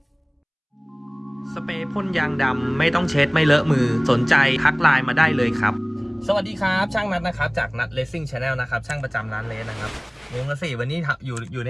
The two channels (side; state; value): both; identical; correlation 1.00